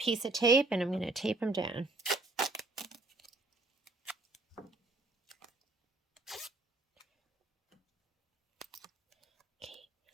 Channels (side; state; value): left; quieter; 3.2 dB